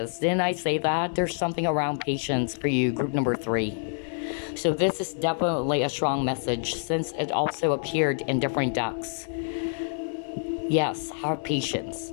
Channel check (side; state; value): right; silent; digital silence